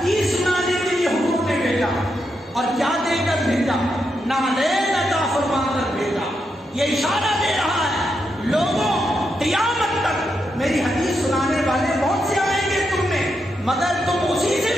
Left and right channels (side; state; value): both; normal; correlation 0.83